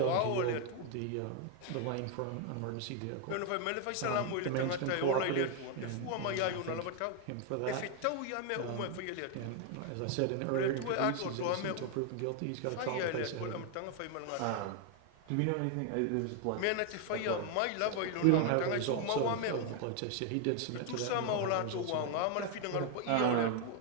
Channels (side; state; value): both; different; correlation 0.01